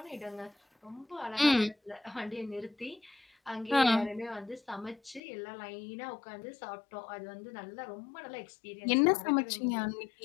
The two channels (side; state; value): right; drops out; at 5.2 s